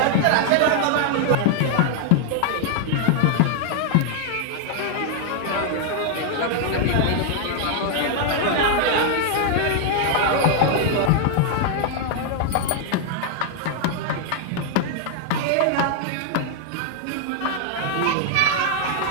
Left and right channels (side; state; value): both; different; correlation 0.00